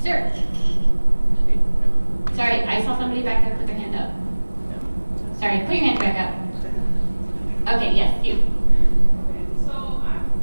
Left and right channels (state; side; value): inverted; both; correlation -1.00